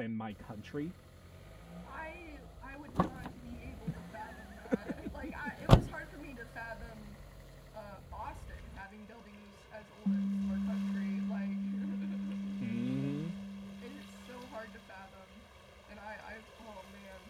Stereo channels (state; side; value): identical; both; correlation 1.00